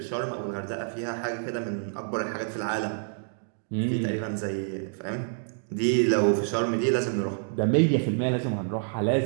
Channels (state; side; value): silent; left; digital silence